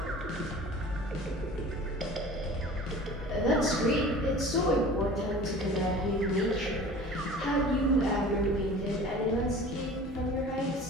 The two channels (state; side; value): normal; both; correlation 0.42